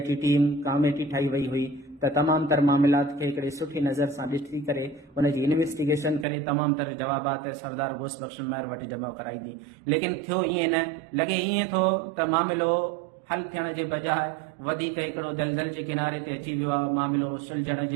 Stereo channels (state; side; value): drops out; left; at 6.2 s